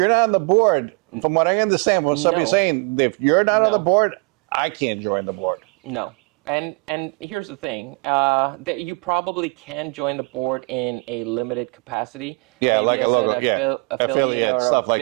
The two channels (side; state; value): left; quieter; 33.0 dB